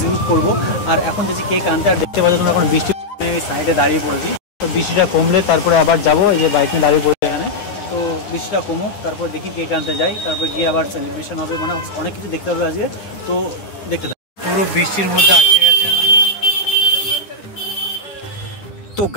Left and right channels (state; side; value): late; right; 10 ms